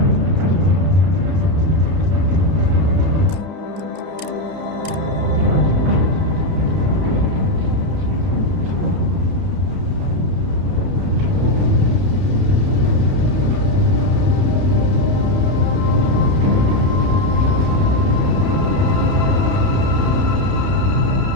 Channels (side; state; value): left; late; 31 ms